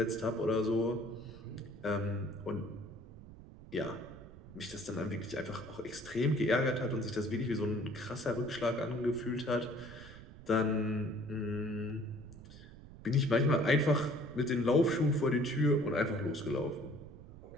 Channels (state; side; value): noise; right; rumble, 17 dB below the sound